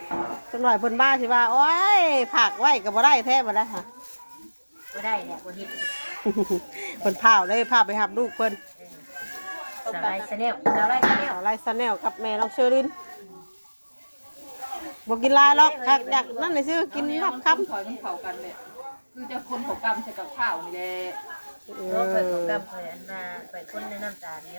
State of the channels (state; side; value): inverted; both; correlation -1.00